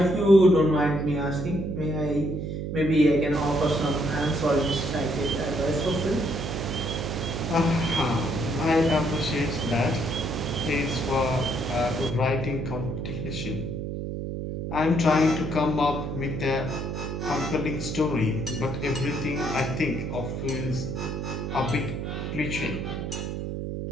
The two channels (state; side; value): noise; right; hum, 4 dB below the sound